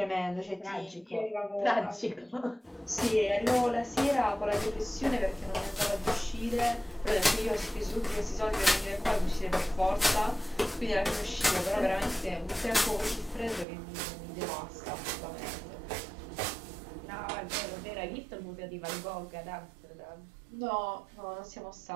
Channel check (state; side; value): drops out; left; at 13.7 s